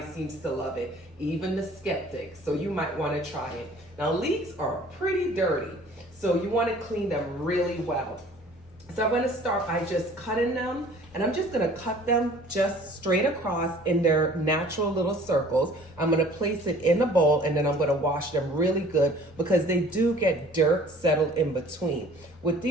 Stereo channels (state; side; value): normal; both; correlation 0.51